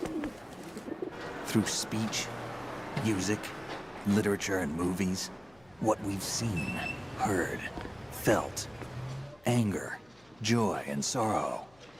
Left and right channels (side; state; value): left; noise; hum, 30 dB below the sound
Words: Through speech, music, literature, and movies, what we've seen, heard, felt, anger, joy, and sorrow.